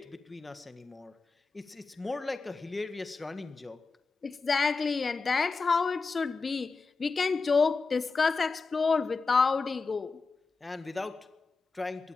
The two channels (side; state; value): right; quieter; 4.3 dB